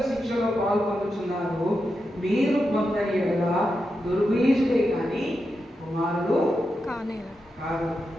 శిక్షలో పాల్పొందుతున్నారు. మీరు పొందని ఎడల దుర్బీజుడే కానీ కుమారుడు కాదు.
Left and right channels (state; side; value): normal; both; correlation 0.88